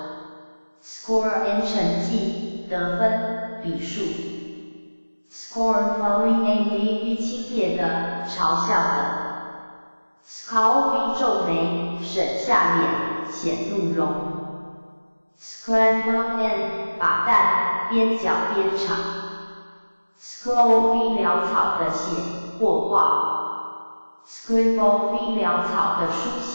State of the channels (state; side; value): inverted; both; correlation -1.00